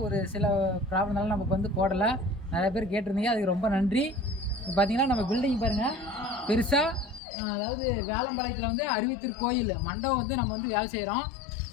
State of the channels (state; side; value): drops out; right; at 7.2 s